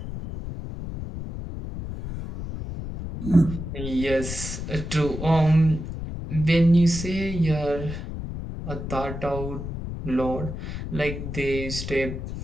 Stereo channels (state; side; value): noise; left; rumble, 7 dB below the sound